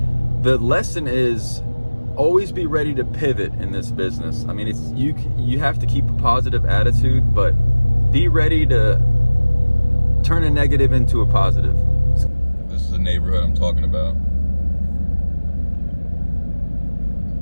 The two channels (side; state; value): both; inverted; correlation -1.00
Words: the lesson is, always be ready to pivot in this business. I mean, you have to keep a positive attitude, but be ready to turn a negative into a positive. This is the neighborhood I'm talking about.